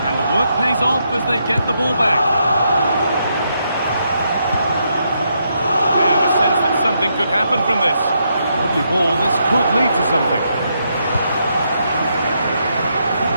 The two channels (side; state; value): both; inverted; correlation -0.79